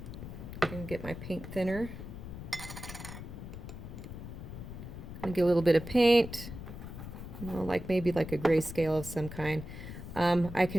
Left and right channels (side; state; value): left; noise; rumble, 10 dB below the sound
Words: I'm going to get my paint thinner. I'm going to get a little bit of paint, like maybe like a grayscale of some kind. I